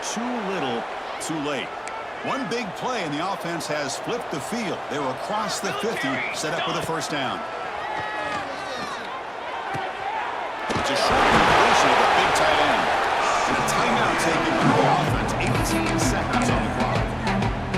too little, too late. One big play and the offense has flipped the field. They're across the 50, set up with a first down. It's a short completion of the big tight end. And a timeout taken by the offense. 18 seconds on the clock.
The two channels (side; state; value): both; identical; correlation 1.00